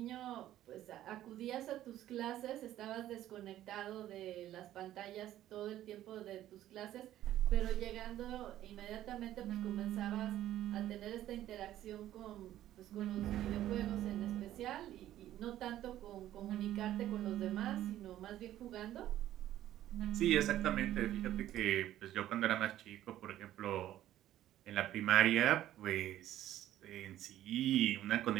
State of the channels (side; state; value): left; quieter; 13.0 dB